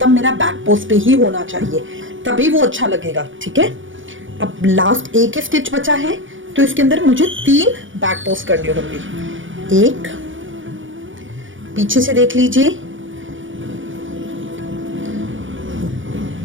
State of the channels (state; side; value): late; left; 0.56 ms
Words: मेरा बैक पोस्ट पे ही होना चाहिए, तभी वो अच्छा लगेगा, ठीक है। अब लास्ट एक स्टिच बचा है तो इसके अंदर मुझे 3 बैक पोस्ट करने होंगे। एक पीछे से देख लीजिए,